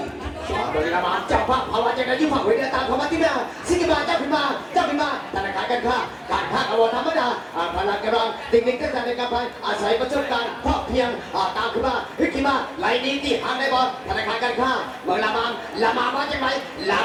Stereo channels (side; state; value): both; identical; correlation 1.00